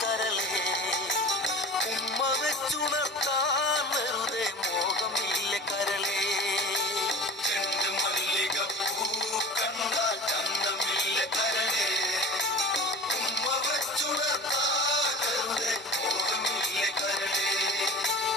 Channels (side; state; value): both; normal; correlation 0.38